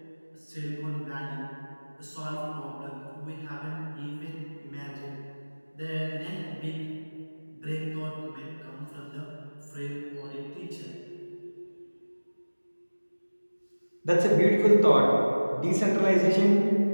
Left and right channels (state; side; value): inverted; both; correlation -1.00